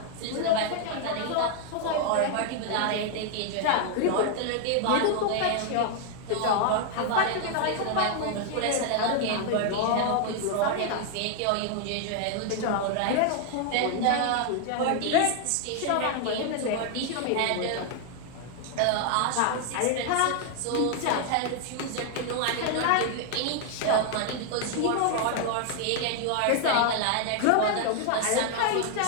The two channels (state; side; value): different; both; correlation 0.00